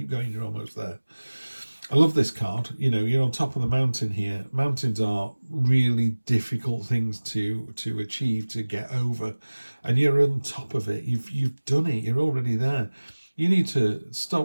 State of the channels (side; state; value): both; inverted; correlation -1.00